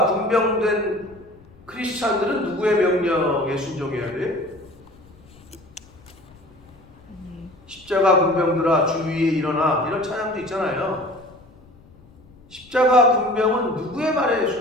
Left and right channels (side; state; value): left; noise; rumble, 26 dB below the sound